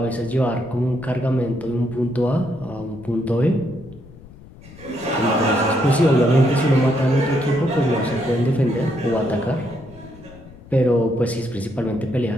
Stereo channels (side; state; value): left; noise; rumble, 20 dB below the sound